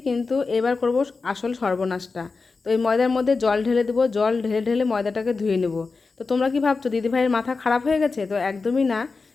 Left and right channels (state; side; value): quieter; right; 4.3 dB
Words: কিন্তু এবার করব আসল সর্বনাশটা। তো এই ময়দার মধ্যে জল ঢেলে দেবো, জল ঢেলে ঢেলে ময়দাটাকে ধুয়ে নেব। তো তোমরা কি ভাবছো দিদিভাইয়ের মাথা খারাপ হয়ে গেছে? তো একদমই না।